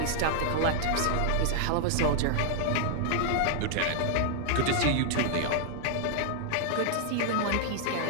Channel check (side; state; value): both; different; correlation 0.00